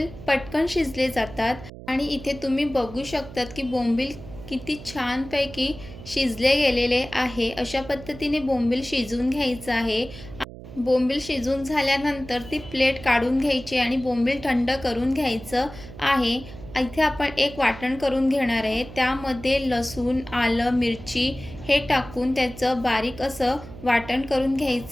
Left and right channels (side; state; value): right; noise; hum, 15 dB below the sound